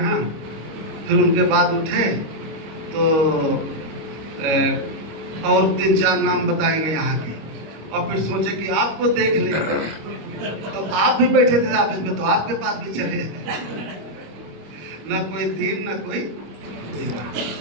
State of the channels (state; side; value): late; left; 26 ms